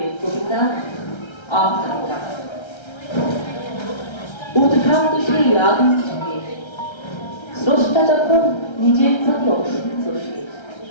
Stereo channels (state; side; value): late; right; 1.3 ms